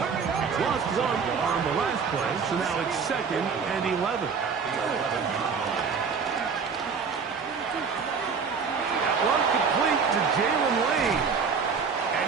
Lost 1 on the last play, so now it's 2nd and 11. That one complete to Jalen Lane.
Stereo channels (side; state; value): left; quieter; 5.7 dB